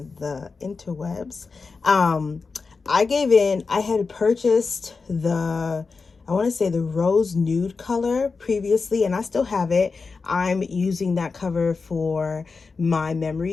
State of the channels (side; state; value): right; quieter; 4.5 dB